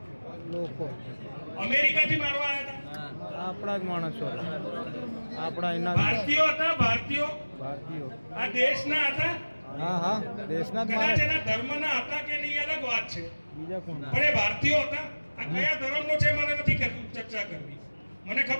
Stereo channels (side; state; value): both; inverted; correlation -1.00